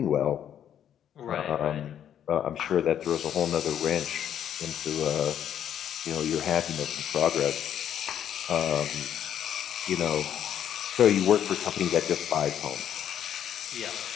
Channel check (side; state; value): right; quieter; 9.8 dB